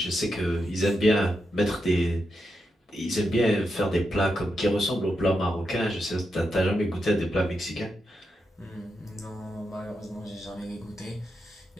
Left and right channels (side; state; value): both; normal; correlation 0.85